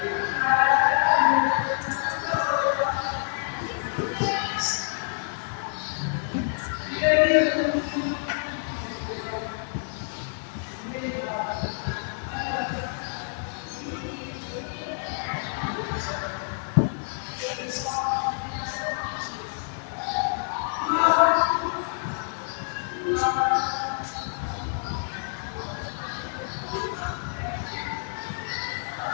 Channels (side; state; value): right; silent; 57 dB below the other